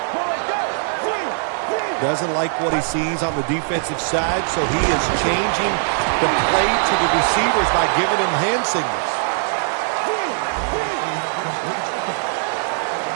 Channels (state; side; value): silent; left; digital silence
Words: Doesn't like what he sees on the defensive side, so he is changing the play to the receivers by giving him hand signals.